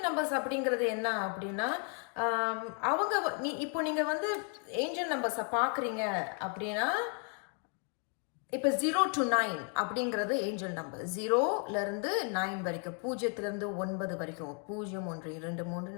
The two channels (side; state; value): right; quieter; 38.5 dB